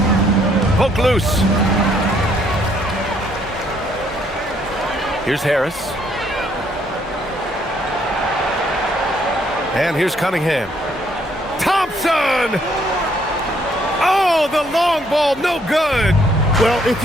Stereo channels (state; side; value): normal; both; correlation 0.68